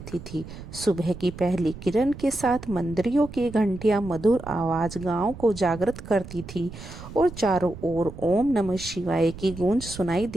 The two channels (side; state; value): right; noise; rumble, 13 dB below the sound